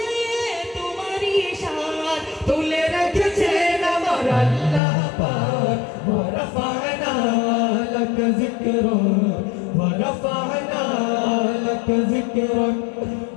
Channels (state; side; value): drops out; right; at 4.8 s